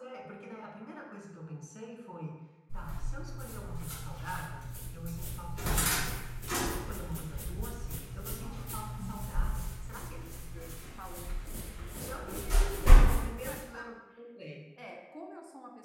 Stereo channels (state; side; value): identical; both; correlation 1.00